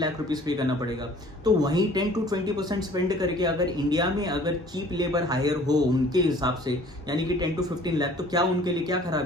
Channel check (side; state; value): both; normal; correlation 0.52